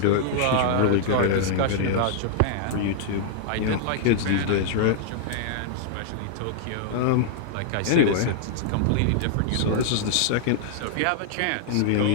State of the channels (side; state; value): both; different; correlation -0.01